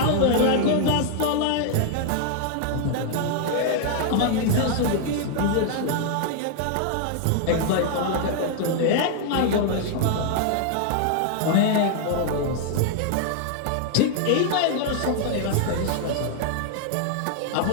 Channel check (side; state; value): both; different; correlation -0.01